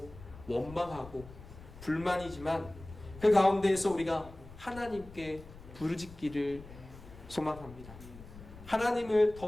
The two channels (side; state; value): left; noise; rumble, 17 dB below the sound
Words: 원망하고 불만이지만 그 가운데에서 우리가 하나님께 부르짖기를 소망합니다. 하나님을